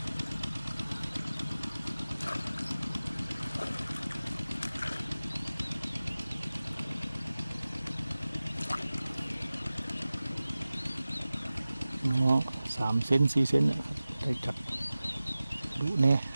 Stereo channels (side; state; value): both; inverted; correlation -0.97